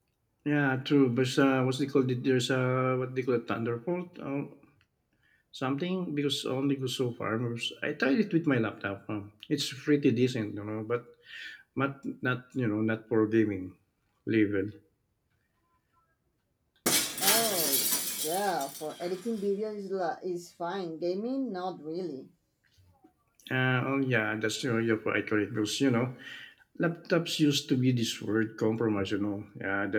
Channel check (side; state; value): both; identical; correlation 1.00